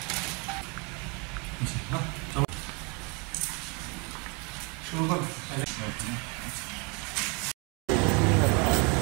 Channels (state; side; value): quieter; left; 31.5 dB